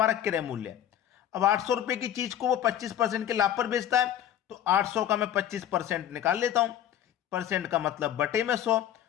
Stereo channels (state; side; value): quieter; right; 10.9 dB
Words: क्रय मूल्य है। अब 800 रुपए की चीज को वो 25% के लाभ पर बेचता है, तो 800 का मैं 25% निकाल लेता हूं। परसेंट का मतलब बटे में 100,